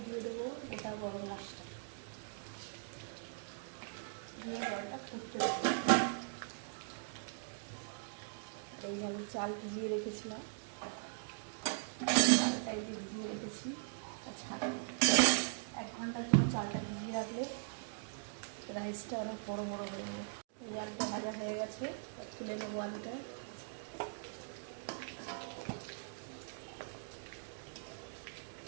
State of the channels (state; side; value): silent; left; digital silence